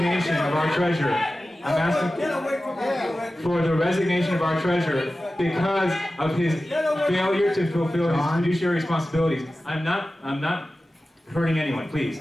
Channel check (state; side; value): normal; both; correlation 0.95